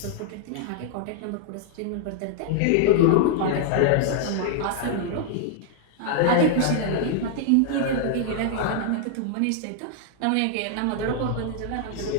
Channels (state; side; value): different; both; correlation -0.01